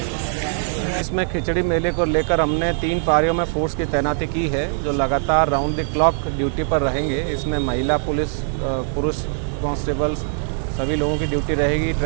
इसमें खिचड़ी मेले को लेकर हमने 3 पारियों में फोर्स की तैनाती की है, जो लगातार राउंड द क्लॉक ड्यूटी पर रहेंगे। इसमें महिला पुलिस, पुरुष कांस्टेबल्स सभी लोगों की ड्यूटी रहेगी।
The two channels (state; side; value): silent; left; digital silence